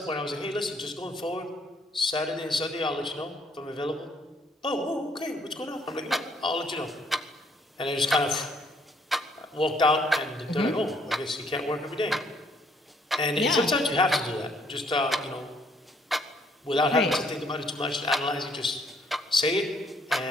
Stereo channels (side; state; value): both; normal; correlation 0.66